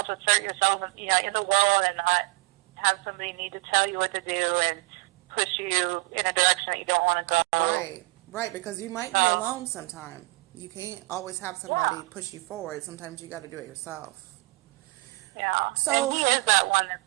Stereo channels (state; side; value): quieter; left; 24.0 dB